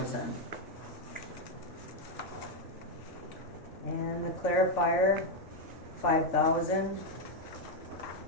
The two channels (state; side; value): normal; both; correlation 0.03